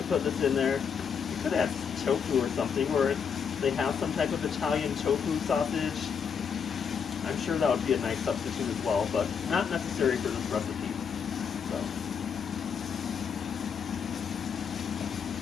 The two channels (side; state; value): right; quieter; 6.8 dB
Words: put this in there. You could add tofu or something, or if they have some type of Italian tofu sausage, I'm sure that would be a nice substitute as well, but not necessary for this recipe.